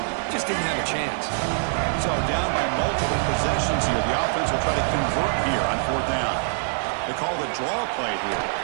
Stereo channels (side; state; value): left; silent; 58 dB below the other